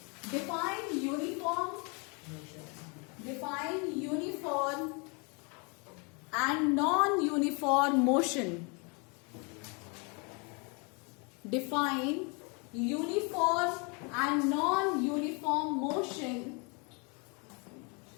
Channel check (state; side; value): quieter; right; 33.1 dB